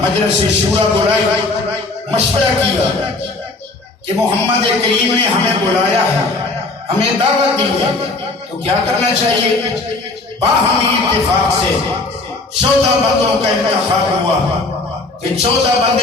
شورا بلائی، مشورہ کیا کہ محمد کریم نے ہمیں بلایا ہے، ہمیں دعوت دی ہے، تو کیا کرنا چاہیے؟ باہمی اتفاق سے 14 بندوں کا انتخاب ہوا کہ 14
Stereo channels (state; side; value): quieter; right; 3.3 dB